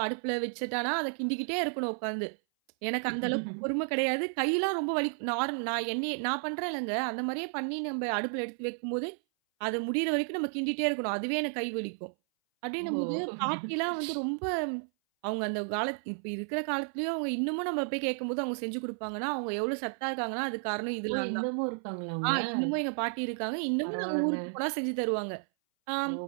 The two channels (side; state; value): left; silent; 56 dB below the other